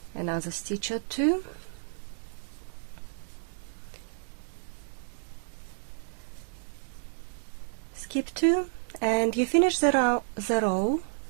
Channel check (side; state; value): left; silent; digital silence